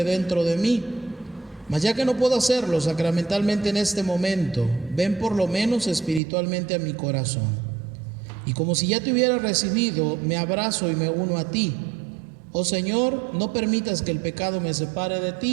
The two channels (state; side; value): drops out; left; at 6.2 s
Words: dentro de mí. Mas ya que no puedo hacerlo sacramentalmente en este momento, ven por lo menos espiritualmente a mi corazón. Y como si ya te hubiera recibido, me abrazo y me uno a ti. Oh Señor, no permitas que el pecado me separe de